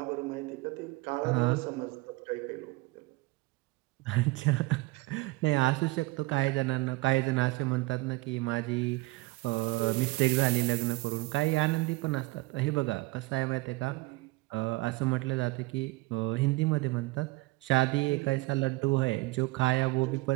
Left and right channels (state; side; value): quieter; left; 22.1 dB